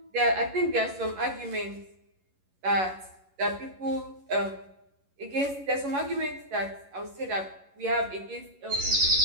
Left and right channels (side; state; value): left; late; 11 ms